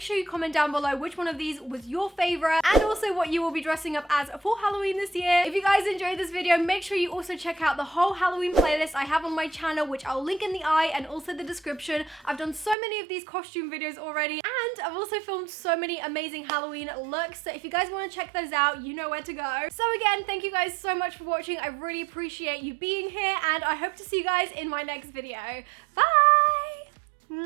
you comment down below which one of these was your favorite and also what you will be dressing up as for Halloween this year. If you guys enjoyed this video, make sure you also check out the whole Halloween playlist I have on my channel, which I'll link in the eye and also the description. I've done so many of these costume videos already, and I've also filmed so many amazing Halloween looks, so if you guys want to check those out, you know where to go. So again, thank you guys so much for watching. I really appreciate you being here, and I hope to see you guys in my next video. Bye!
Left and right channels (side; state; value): left; drops out; at 12.8 s